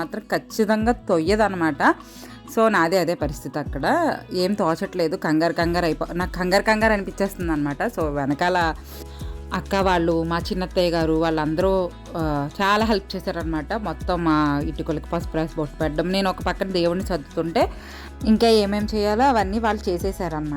మాత్రం ఖచ్చితంగా తొయ్యదనమాట. సో నాదే అదే పరిస్థితి, అక్కడ ఏం తోచట్లేదు, నాకు కంగారు అనిపించేస్తుంది అనమాట. సో వెనకాల అక్క వాళ్ళు, మా చిన్నత్తయ్య గారు వాళ్ళందరూ చాలా హెల్ప్ చేశారనమాట. మొత్తం మా ఇటుకలకి పసుపు రాసి బొట్టు పెట్టడం, నేను ఒక పక్కన దేవుడిని సర్దుతుంటే ఇంకా ఏమేమి చేయాలో అవన్నీ వాళ్ళు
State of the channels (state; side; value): identical; both; correlation 1.00